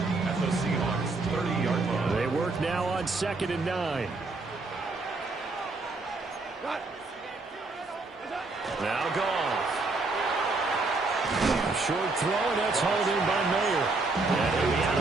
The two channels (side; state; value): left; quieter; 3.5 dB